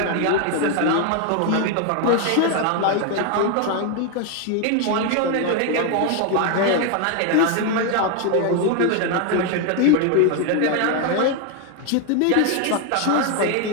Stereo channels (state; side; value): different; both; correlation 0.01